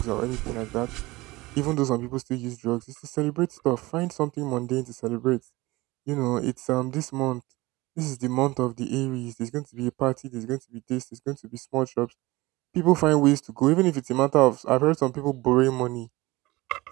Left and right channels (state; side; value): quieter; left; 20.7 dB